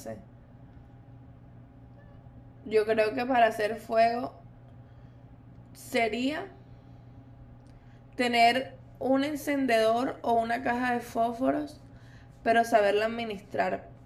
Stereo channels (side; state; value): both; identical; correlation 1.00